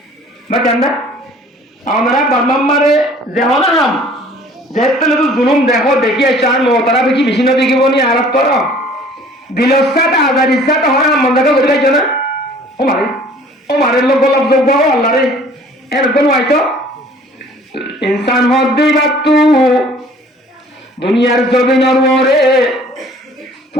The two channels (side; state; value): both; normal; correlation 0.52